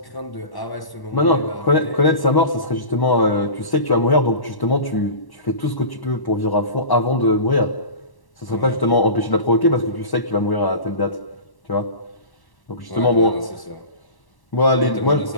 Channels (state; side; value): late; right; 1.1 ms